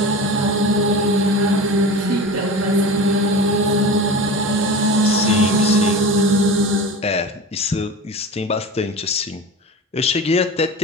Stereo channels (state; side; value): normal; both; correlation 0.32